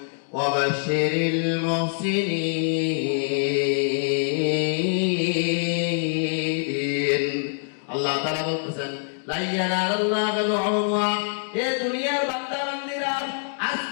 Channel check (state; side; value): silent; right; digital silence